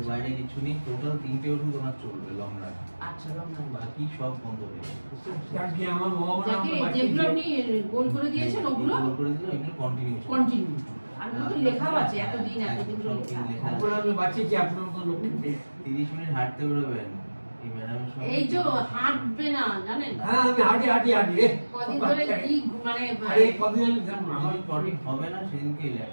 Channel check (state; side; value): inverted; both; correlation -1.00